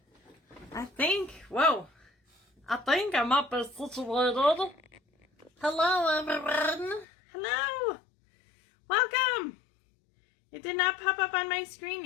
I think I'm up as situated. Hello, everyone. Hello. Welcome. It did not pop up on my screen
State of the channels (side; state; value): right; drops out; at 7.1 s